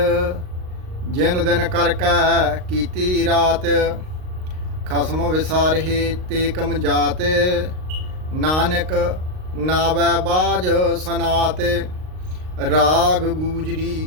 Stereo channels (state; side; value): late; left; 38 ms